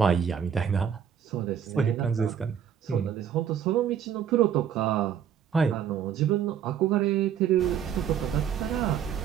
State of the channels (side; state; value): left; quieter; 8.5 dB